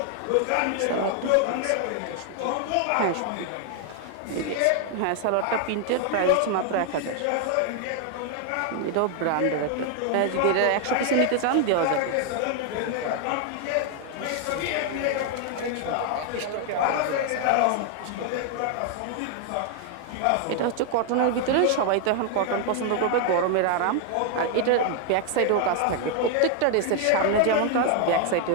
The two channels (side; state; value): both; different; correlation 0.00